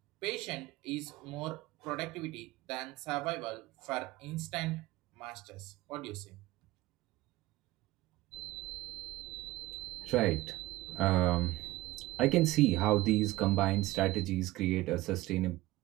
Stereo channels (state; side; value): quieter; left; 18.2 dB